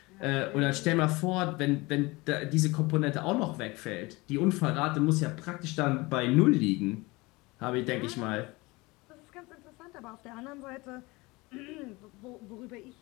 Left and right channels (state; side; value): quieter; right; 23.3 dB